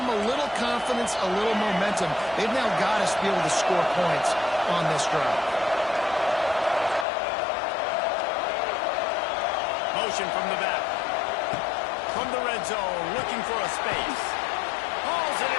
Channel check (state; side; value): drops out; right; at 7.1 s